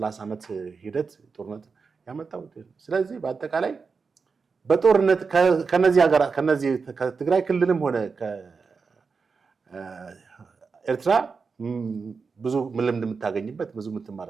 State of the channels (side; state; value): left; quieter; 5.0 dB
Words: ዓመት ሂደት ጦርነት ያመጣው። ስለዚህ በአጠቃላይ በጦርነት ከነዚህ ከትግራይ ክልልም ሆነ ከኤርትራ ብዙ ልምድ የምታገኝበት ብዙ